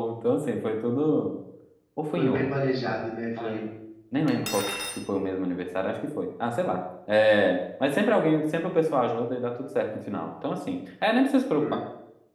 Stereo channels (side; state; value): both; identical; correlation 1.00